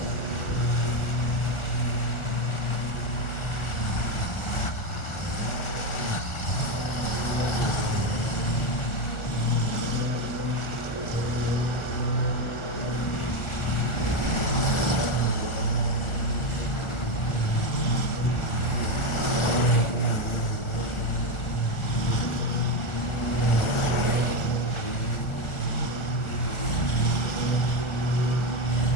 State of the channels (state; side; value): late; right; 1.4 ms